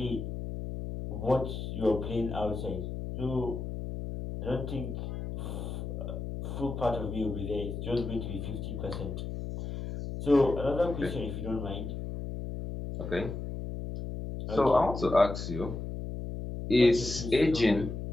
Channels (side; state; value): left; noise; hum, 6 dB below the sound